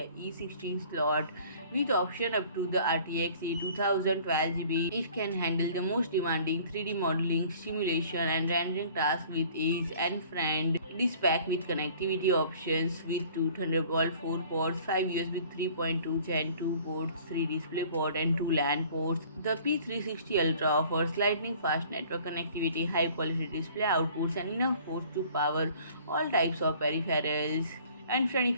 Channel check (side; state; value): both; inverted; correlation -0.52